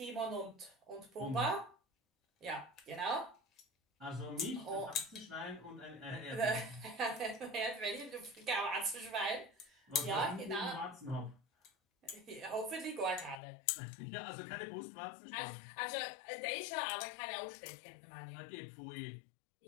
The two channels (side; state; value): right; drops out; at 13.4 s